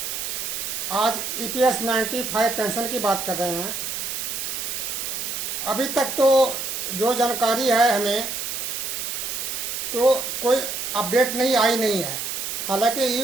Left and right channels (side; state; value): right; noise; hiss, 4 dB below the sound